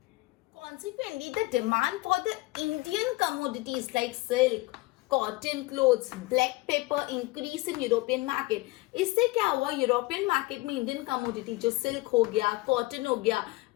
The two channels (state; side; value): quieter; right; 21.5 dB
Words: Consequently, the demand for the Indian commodities like silk, cotton clothes, black pepper increase in European market. इससे क्या हुआ, यूरोपियन मार्केट में इंडियन कमोडिटी जो सिल्क हो गया, कॉटन हो गया,